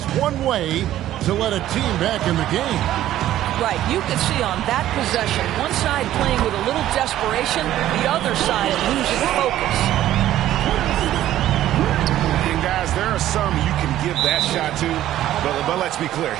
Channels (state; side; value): quieter; left; 13.1 dB